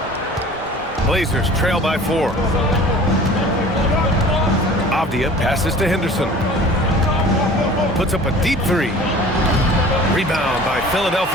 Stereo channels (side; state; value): both; normal; correlation 0.44